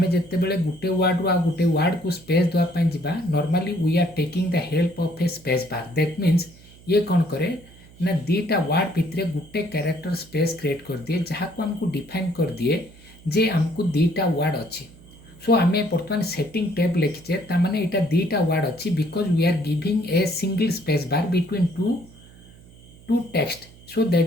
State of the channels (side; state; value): right; noise; hum, 23 dB below the sound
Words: जेते बेले गुटे वर्ड रो आ गुटे वर्ड को स्पेस दवा पई जिबा normally we are taking the help of a space bar that means ये कौन करे ना दीटा वर्ड भितरे गुटे कैरेक्टर स्पेस क्रिएट कर दिए जहाँ को हमको डिफाइन कर दिए जे हमको दीटा वर्ड अच्छी सो आम बर्तमान सेटिंग टैब लिखीचे ताने यहाँ दीटा वर्ड अच्छी because we are giving a single space bar between two text so